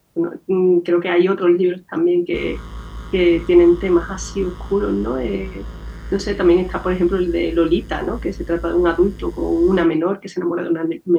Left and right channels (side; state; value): both; identical; correlation 1.00